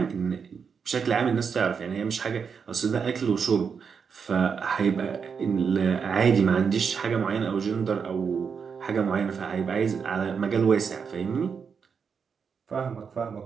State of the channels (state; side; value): quieter; left; 6.2 dB